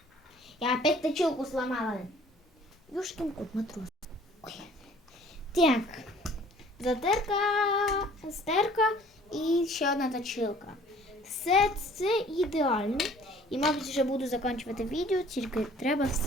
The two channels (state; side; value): normal; both; correlation 0.54